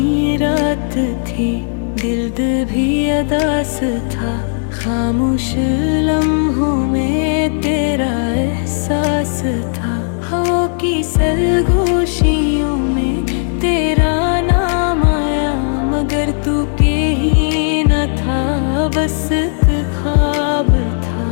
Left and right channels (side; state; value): right; silent; digital silence